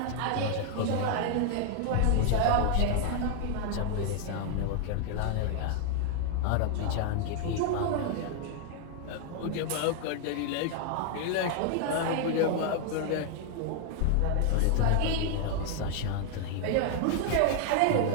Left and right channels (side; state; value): both; different; correlation 0.00